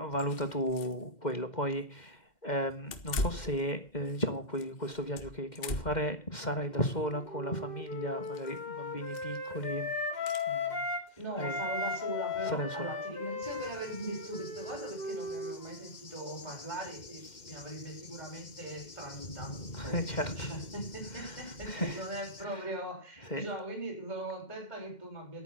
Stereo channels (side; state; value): right; late; 2.1 ms